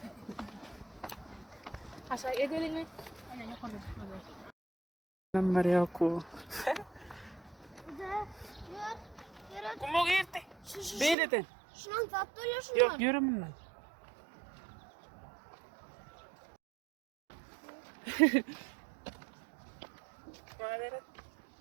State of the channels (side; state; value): left; drops out; at 11.2 s